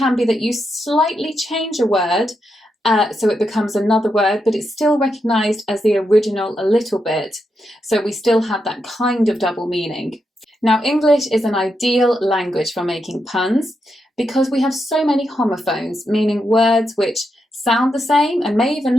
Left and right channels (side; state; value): both; normal; correlation 0.84